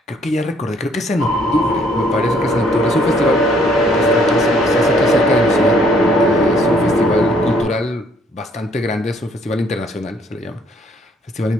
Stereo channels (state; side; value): normal; both; correlation 0.64